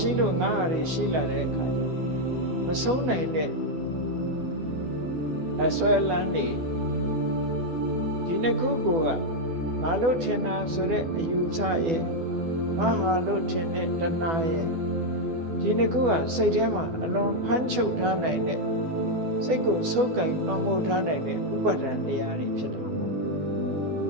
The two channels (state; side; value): late; left; 12 ms